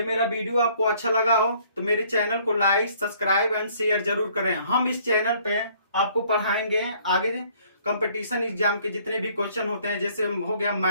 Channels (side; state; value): both; inverted; correlation -0.61